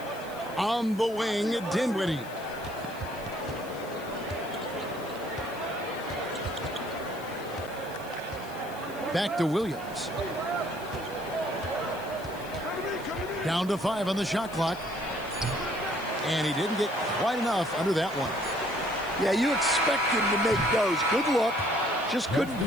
On the wing, Dinwiddie. Back to Williams. Down to 5 on the shot clock. And he didn't get quite enough under that one. Yeah, you expect him to make those. Good look. Just couldn't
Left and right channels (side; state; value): left; noise; hiss, 20 dB below the sound